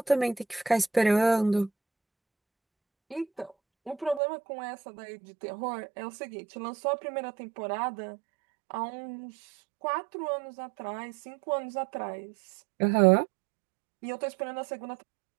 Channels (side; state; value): left; drops out; at 4.2 s